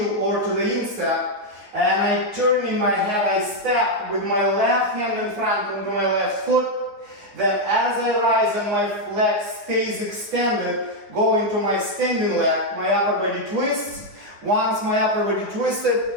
or to the instep, and I turn in my head, I step with my left hand in front onto my left foot. Then as I rise and my leg stays extended, go into my standing leg, my upper body twists. Once my upper body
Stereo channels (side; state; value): left; late; 9.7 ms